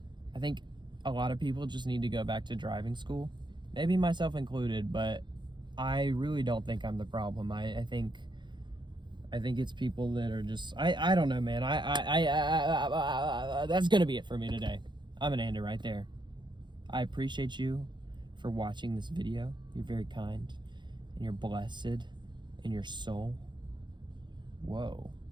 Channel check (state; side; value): late; left; 0.22 ms